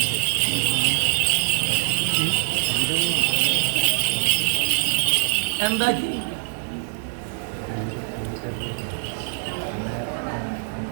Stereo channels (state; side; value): silent; left; digital silence